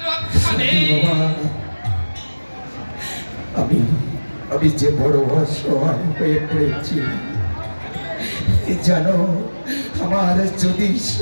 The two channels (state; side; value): inverted; both; correlation -1.00